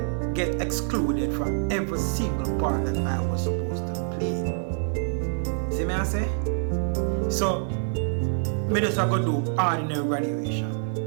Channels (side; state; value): left; silent; 61 dB below the other